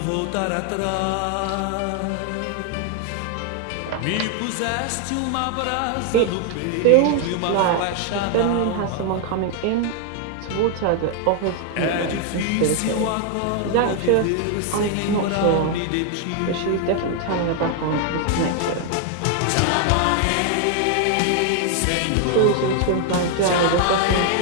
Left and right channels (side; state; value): both; different; correlation 0.00